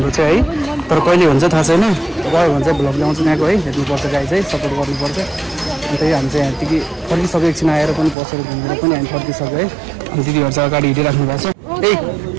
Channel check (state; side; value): drops out; left; at 8.2 s